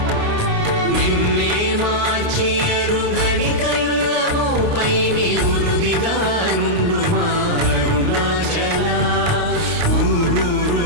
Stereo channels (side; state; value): left; late; 29 ms